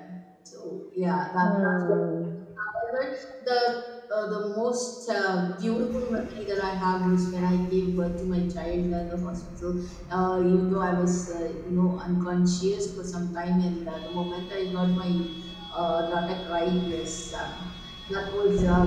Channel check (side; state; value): both; identical; correlation 1.00